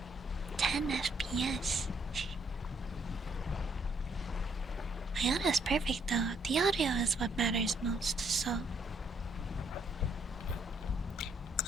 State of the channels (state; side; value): normal; both; correlation 0.70